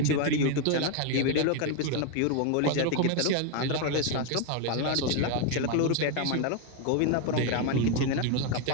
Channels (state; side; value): different; both; correlation 0.01